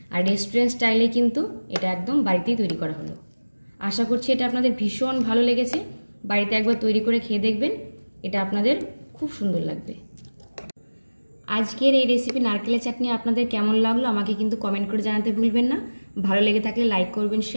আর রেস্টুরেন্ট স্টাইলে কিন্তু এটা একদম বাড়িতেই তৈরি করা হলো। আশা করছি এটা আপনাদের ভীষণ ভালো লেগেছে। বাড়িতে একবার তৈরি করে খেয়ে দেখবেন, এটা আপনাদের খুব সুন্দর লাগবে। আজকের এই রেসিপি নারকেলের চাটনি আপনাদের কেমন লাগলো আমাকে কিন্তু কমেন্ট করে জানাতে ভুলবেন না। ভালো লেগে থাকলে লাইক করবেন,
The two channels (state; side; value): inverted; both; correlation -1.00